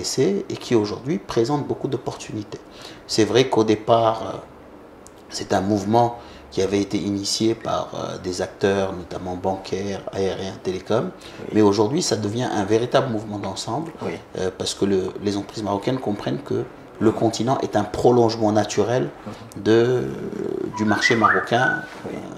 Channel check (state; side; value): identical; both; correlation 1.00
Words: et qui aujourd'hui présente beaucoup d'opportunités. C'est vrai qu'au départ, c'est un mouvement qui avait été initié par des acteurs, notamment bancaires, aériens, télécoms. Mais aujourd'hui, ça devient un véritable mouvement d'ensemble parce que les entreprises marocaines comprennent que le continent est un prolongement naturel du marché marocain